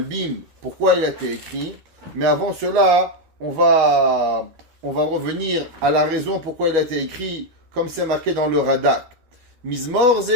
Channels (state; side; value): late; left; 12 ms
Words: pourquoi il a été écrit, mais avant cela, on va revenir à la raison pourquoi il a été écrit, comme c'est marqué dans le Radak. Mizmor